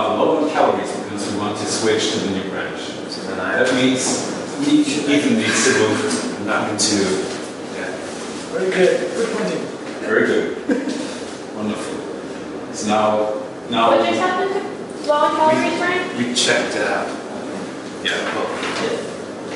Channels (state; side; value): identical; both; correlation 1.00